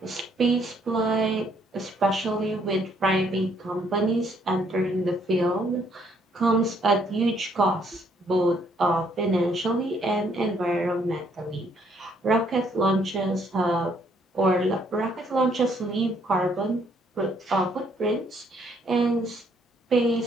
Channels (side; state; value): both; normal; correlation 0.68